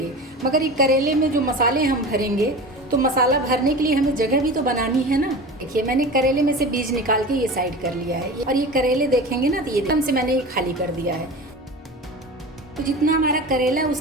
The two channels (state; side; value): normal; both; correlation 0.32